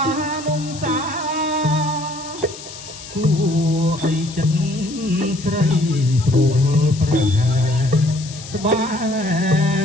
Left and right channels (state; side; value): noise; left; hiss, 14 dB below the sound